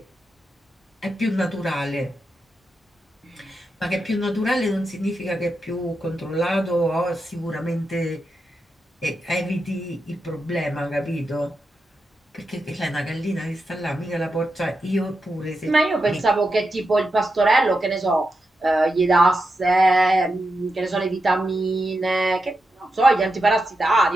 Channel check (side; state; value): both; normal; correlation 0.87